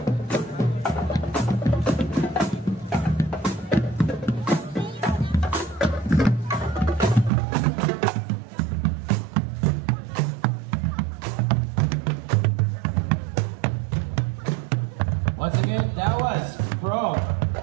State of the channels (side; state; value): left; drops out; at 7.3 s